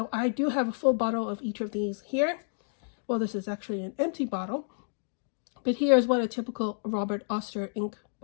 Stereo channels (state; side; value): silent; right; digital silence